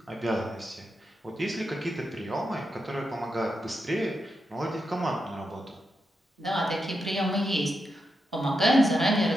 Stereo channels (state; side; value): normal; both; correlation 0.86